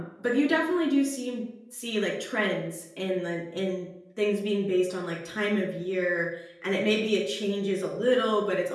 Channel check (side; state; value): both; identical; correlation 1.00